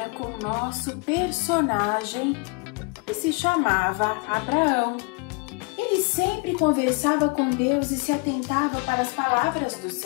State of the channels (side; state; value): right; quieter; 31.1 dB